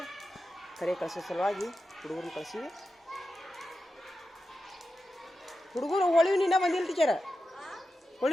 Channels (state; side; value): normal; both; correlation 0.91